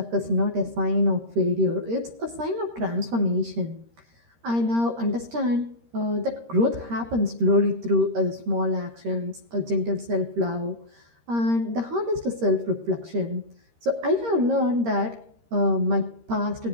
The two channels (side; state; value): left; late; 13 ms